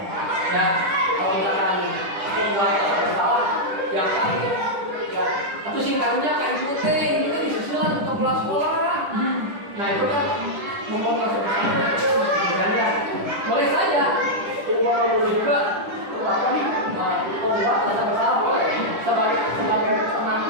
ya. Kalau misalkan membuat rasa bersalah yang kan ya atau singkatnya kan itu disusulan untuk pulang sekolah. Nah itu kan membuat rasa bersalah kan ya. Boleh saja boleh juga apa nih membuat rasa bersalah boleh sebagai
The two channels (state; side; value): late; left; 10 ms